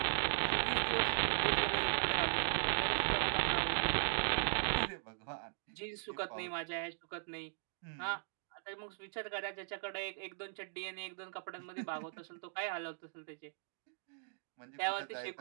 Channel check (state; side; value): silent; left; digital silence